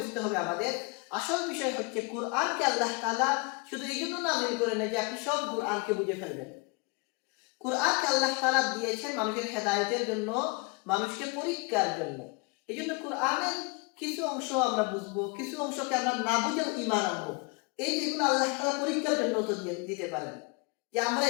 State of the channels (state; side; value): quieter; right; 29.6 dB